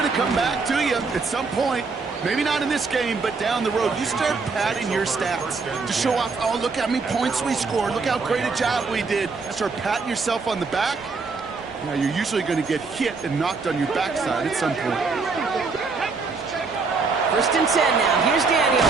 to come back to you at some point. Maybe not in this game, but down the road. You start padding your stats to show off, oh, look how many points we scored. Look how great a job we did. Start patting yourself on the back. Now, you're usually going to get hit and knocked on your backside at some point. 1st and 10 now. Here's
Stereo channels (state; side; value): quieter; left; 4.4 dB